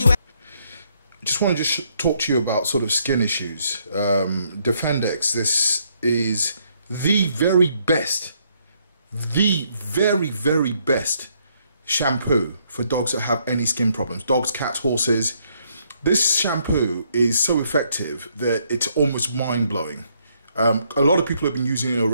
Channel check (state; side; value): inverted; both; correlation -0.71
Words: happy. Just want to just talk to you about sort of skin issues. Defendex, this is the very best, very best shampoo for dogs that have any skin problems. Dogs, cats, horses. This shampoo is so effective that it's almost mind-blowing. A lot of people have been using it